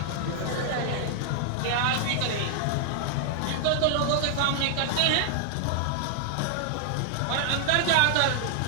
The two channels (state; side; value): different; both; correlation -0.01